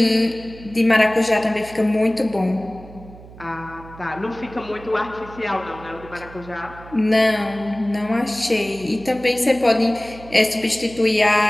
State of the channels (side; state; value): right; noise; hum, 18 dB below the sound